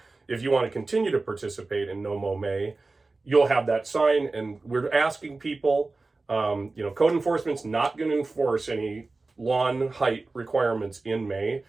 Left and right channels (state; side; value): quieter; left; 3.5 dB